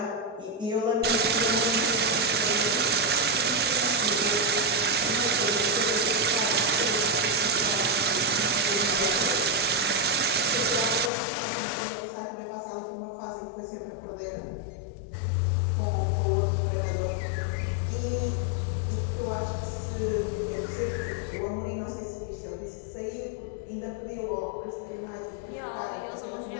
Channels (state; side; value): drops out; right; at 11.1 s